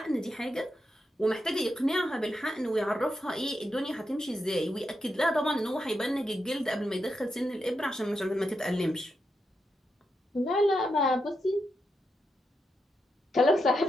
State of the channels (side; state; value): both; normal; correlation 0.85